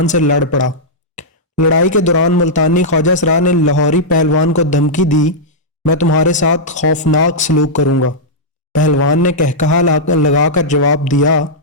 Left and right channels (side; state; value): both; normal; correlation -0.09